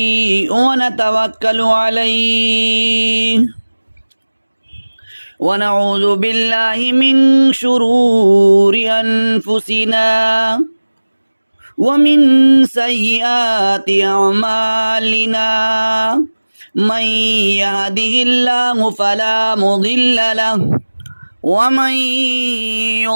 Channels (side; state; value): both; inverted; correlation -1.00